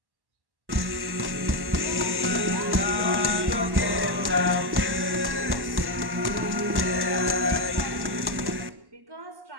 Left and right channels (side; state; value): left; late; 1.1 ms